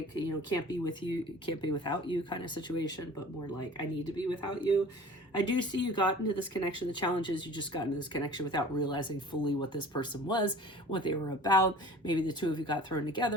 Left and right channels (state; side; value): normal; both; correlation 0.44